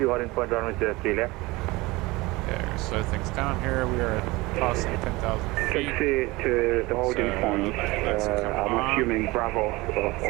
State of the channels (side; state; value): left; quieter; 21.8 dB